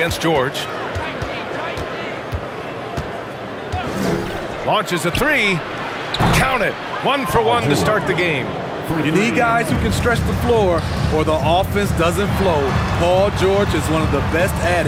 George. Launches a three. Count it. 1 for 1 to start the game. You need guys who can stretch the floor or the offense doesn't flow. Paul George is one of the best at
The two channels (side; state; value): both; identical; correlation 1.00